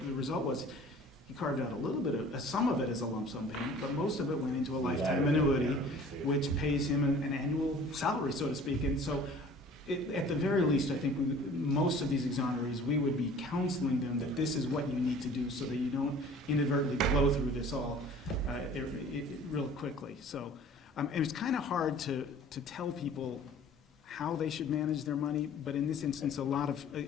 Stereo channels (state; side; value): normal; both; correlation 0.48